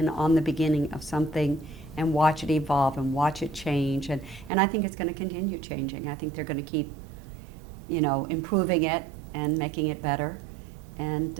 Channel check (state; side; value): drops out; left; at 4.5 s